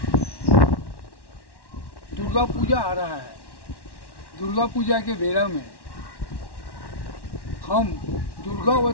दुर्गा पूजा आ रहा है। दुर्गा पूजा के बेला में हम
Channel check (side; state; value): right; late; 1.1 ms